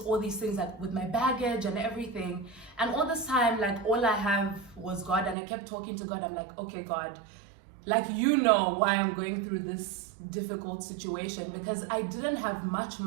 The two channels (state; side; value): drops out; left; at 5.4 s